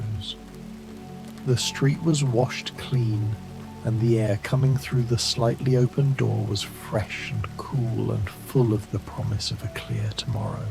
The street was washed clean, and the air coming through the slightly open door was fresh and cool and full of the promise of a clear tomorrow.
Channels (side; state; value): both; identical; correlation 1.00